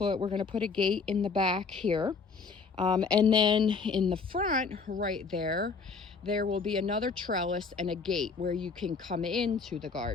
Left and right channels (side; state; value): right; quieter; 4.9 dB